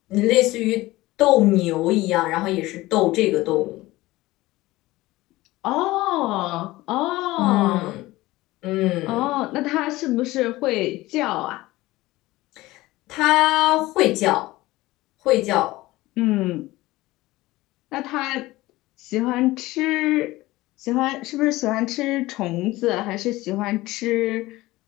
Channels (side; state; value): right; quieter; 18.6 dB